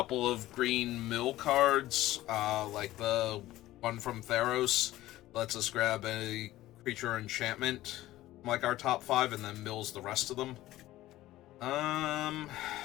of green mill cards, like the one from Theros. Lets us grab a creature enchantment from, like, our top 5 and then mills the rest of them.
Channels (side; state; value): right; quieter; 15.8 dB